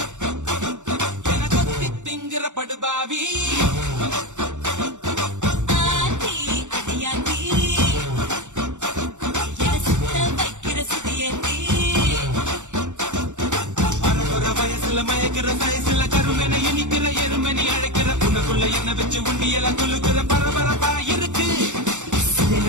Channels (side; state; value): left; late; 0.85 ms